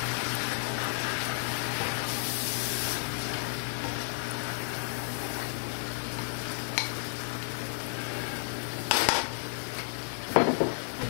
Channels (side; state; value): right; silent; digital silence